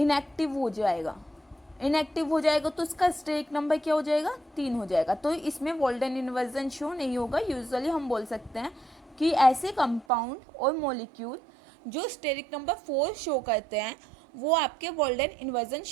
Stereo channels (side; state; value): left; drops out; at 10.1 s